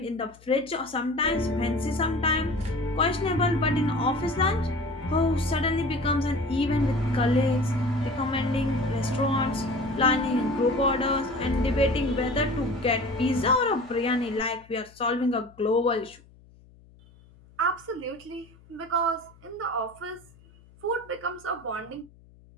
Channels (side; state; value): left; noise; hum, 26 dB below the sound